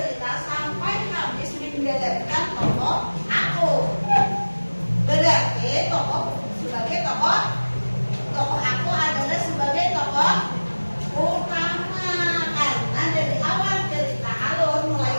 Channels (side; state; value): both; inverted; correlation -1.00